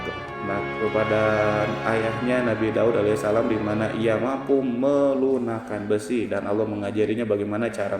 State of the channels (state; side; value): identical; both; correlation 1.00